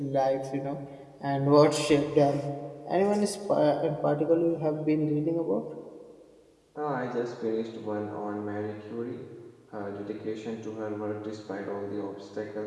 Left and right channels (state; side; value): identical; both; correlation 1.00